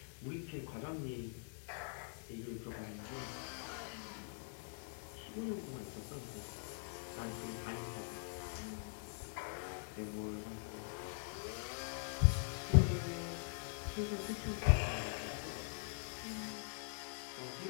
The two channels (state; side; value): silent; right; digital silence